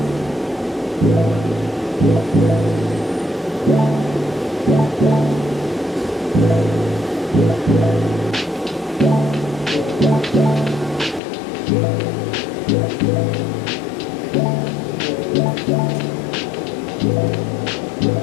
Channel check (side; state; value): right; drops out; at 11.2 s